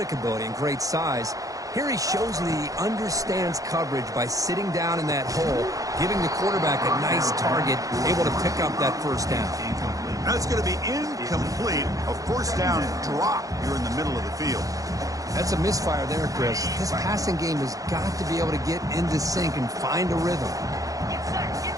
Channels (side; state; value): left; late; 0.17 ms